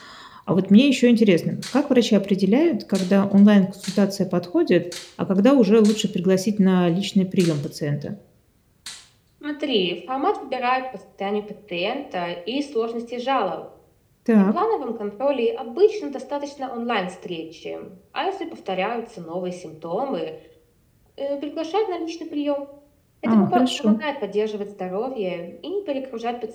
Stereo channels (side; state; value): both; identical; correlation 1.00